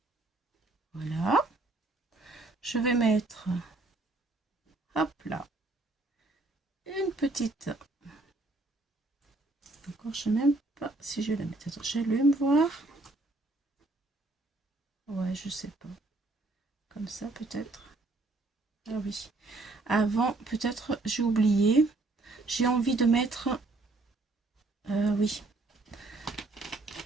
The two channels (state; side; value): quieter; left; 3.1 dB